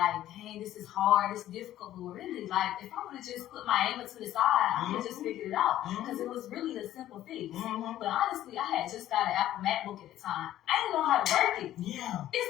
dang, this is hard. It's difficult. But really, like, if I would have just put my anger to the side, I could have just figured it out. Because it was really a simple fix. But honestly, I had just got an Apple MacBook at the time. I didn't know how to work it. Yeah. It's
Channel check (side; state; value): right; quieter; 13.1 dB